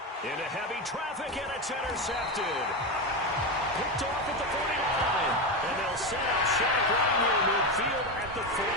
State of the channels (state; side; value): normal; both; correlation 0.15